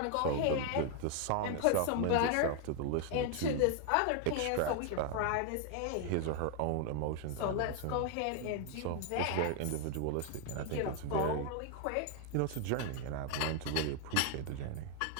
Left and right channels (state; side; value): different; both; correlation 0.00